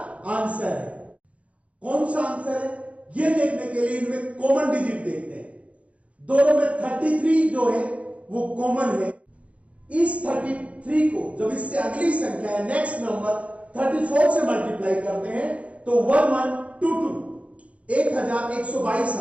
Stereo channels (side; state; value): left; late; 0.064 ms